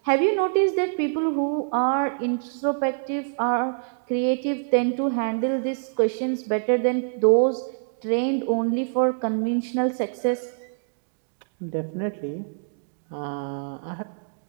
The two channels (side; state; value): left; silent; digital silence